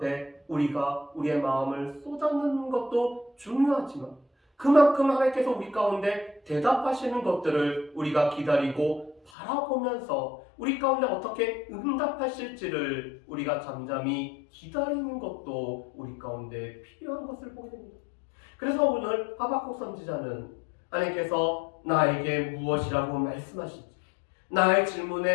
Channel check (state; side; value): drops out; right; at 9.3 s